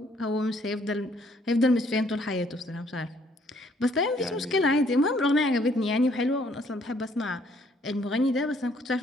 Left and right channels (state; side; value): normal; both; correlation 0.65